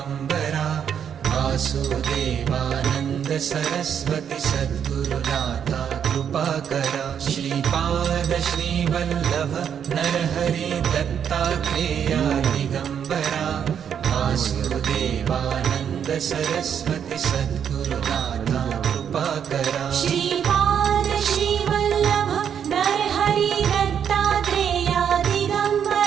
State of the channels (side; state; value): left; quieter; 8.2 dB